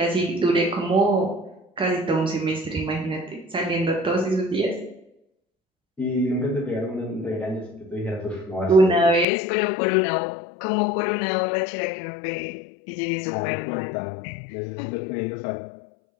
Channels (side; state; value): right; drops out; at 9.2 s